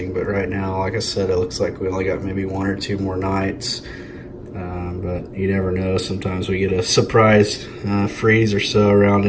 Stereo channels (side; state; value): both; identical; correlation 1.00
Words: But right now, like I said, it looks like we only got maybe 1 or 2 more nights, but you never know. Sometimes we get a surprise freeze or so around